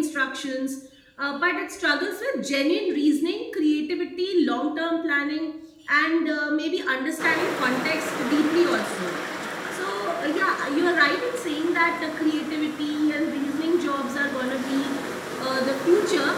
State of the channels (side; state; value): both; identical; correlation 1.00